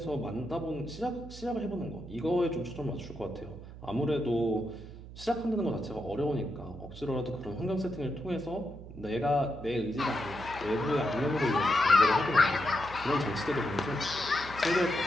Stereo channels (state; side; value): noise; right; hum, 14 dB below the sound